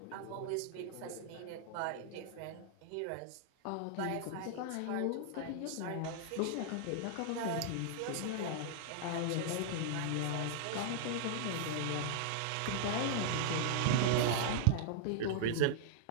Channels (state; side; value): different; both; correlation -0.01